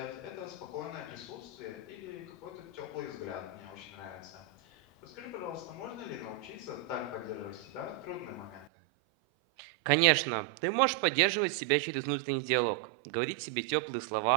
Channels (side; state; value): left; drops out; at 8.7 s